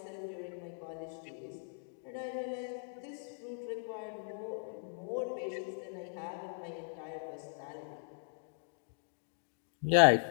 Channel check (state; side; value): silent; right; digital silence